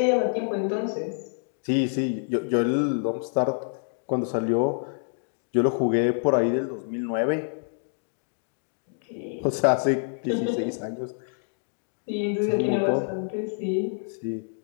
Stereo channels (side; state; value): right; silent; digital silence